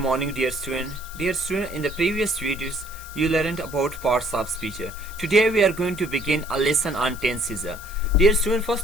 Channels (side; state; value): left; noise; hiss, 17 dB below the sound